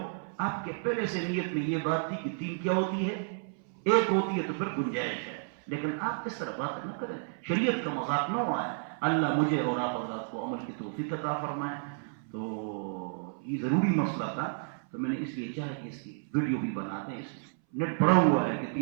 آپ کے پہلے سے نیت میں یہ بات تھی کہ 3 کیا ہوتی ہے، 1 ہوتی ہے تو پھر گنجائش ہے، لیکن آپ اس طرح بات نہ کریں، شریعت کا مذاق نہ ہوا ہے۔ اللہ مجھے اور آپ حضرات کو عمل کی توفیق عطا فرمائے۔ تو یہ ضروری مسئلہ تھا، تو میں نے اس لیے چاہا کہ اس کی ویڈیو بھی بنا دیں۔ اس نیٹ بڑا ہوا ہے کہ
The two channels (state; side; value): silent; left; 57 dB below the other